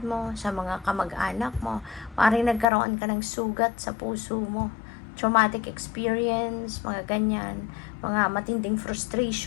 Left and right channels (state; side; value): drops out; right; at 2.7 s